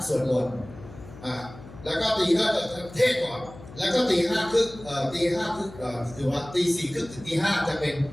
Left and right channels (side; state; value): left; noise; hum, 17 dB below the sound